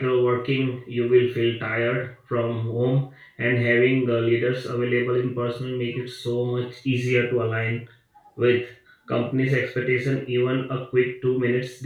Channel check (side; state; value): both; identical; correlation 1.00